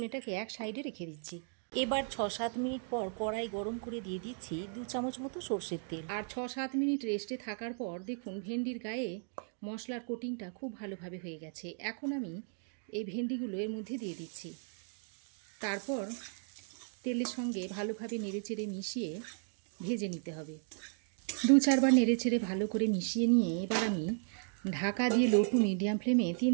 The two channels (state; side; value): silent; left; 54 dB below the other